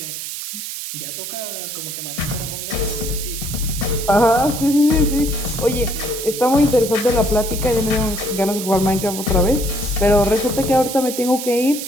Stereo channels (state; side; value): noise; right; hiss, 7 dB below the sound